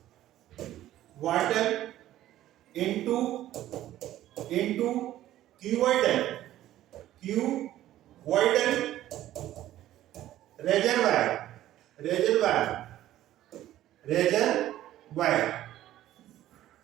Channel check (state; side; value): quieter; left; 13.6 dB